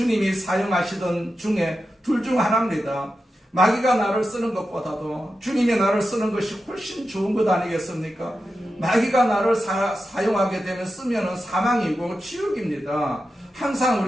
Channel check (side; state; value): both; normal; correlation 0.90